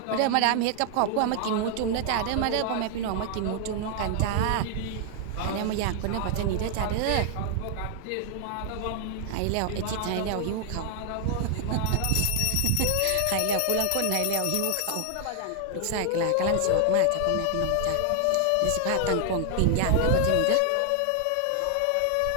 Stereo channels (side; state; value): both; different; correlation 0.00